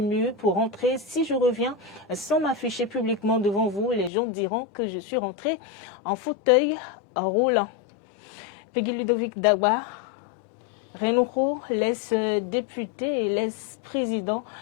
murs pour rentrer. Si je reviens sans m'afficher publiquement devant vous, les gens diront que je suis rentré en fauteuil roulant. » Peggy Ludovic Dagba. Renoukou, l'ex-député et l'ex-président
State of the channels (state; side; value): drops out; right; at 4.1 s